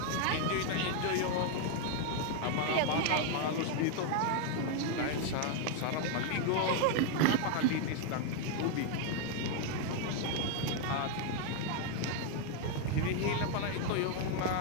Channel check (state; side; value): different; both; correlation 0.01